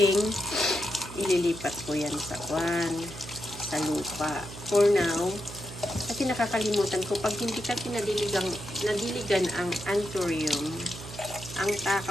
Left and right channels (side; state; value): right; noise; hum, 13 dB below the sound